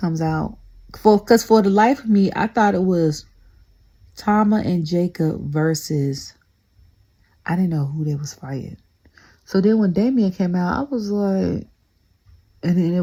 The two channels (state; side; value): identical; both; correlation 1.00